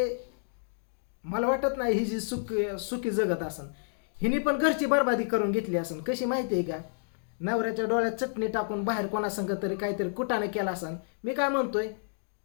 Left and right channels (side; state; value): right; silent; digital silence